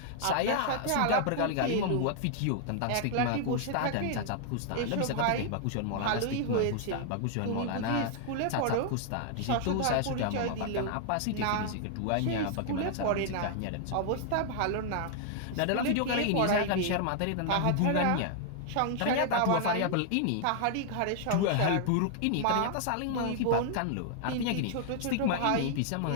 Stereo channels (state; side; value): different; both; correlation 0.00